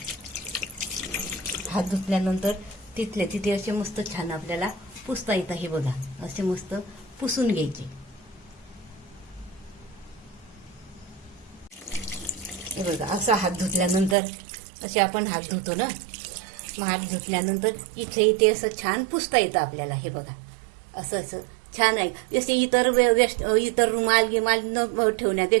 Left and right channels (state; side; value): drops out; left; at 14.2 s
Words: हात धुतल्यानंतर तिथल्या तिथे असे मस्त छान आपल्याला पुसता येतं. हे बघा, असे मस्त पुसून घ्यायचे. हे बघा, असा हात धुतल्यानंतर असे आपण हात धुतो ना, मग हात धुतल्यानंतर इथे असं छान पुसता येतं आपल्याला. हे बघा, असं असं छान आहे. जसे इतर रुमाल गिमाल न